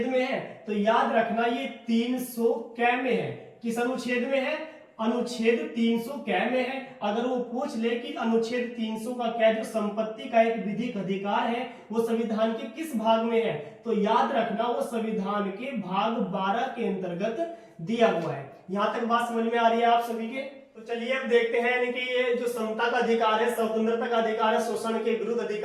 में है? तो याद रखना ये 300 कै में है। किस अनुच्छेद में है? अनुच्छेद 300 कै में है। अगर वो पूछ ले कि अनुच्छेद 300 का क्या जो संपत्ति का एक विधिक अधिकार है वो संविधान के किस भाग में है, तो याद रखना वो संविधान के भाग 12 के अंतर्गत दिया हुआ है। यहां तक बात समझ में आ रही है आप सभी के? तो चलिए अब देखते हैं यानी कि ये जो समता का अधिकार है, स्वतंत्रता का अधिकार है, शोषण के विरुद्ध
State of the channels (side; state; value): both; identical; correlation 1.00